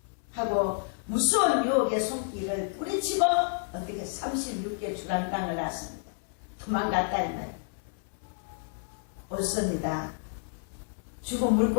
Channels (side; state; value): right; silent; 58 dB below the other